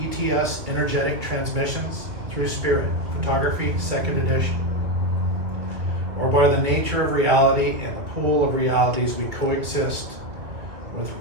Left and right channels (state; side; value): late; left; 2.1 ms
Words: ETS, Energetic Transmissions Through Spirit, Photography, 2nd edition. Or by the nature of reality and the pool of realities we coexist with